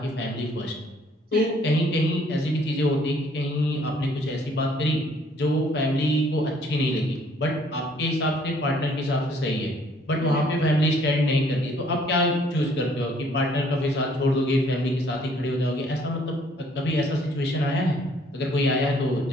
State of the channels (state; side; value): normal; both; correlation 0.62